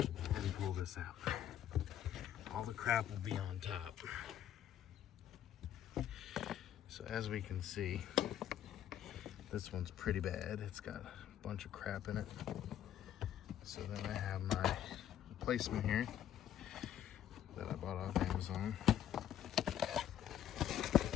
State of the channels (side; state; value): right; quieter; 10.8 dB